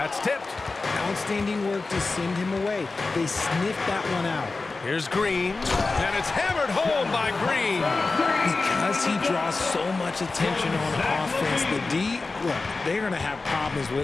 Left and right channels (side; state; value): right; quieter; 3.7 dB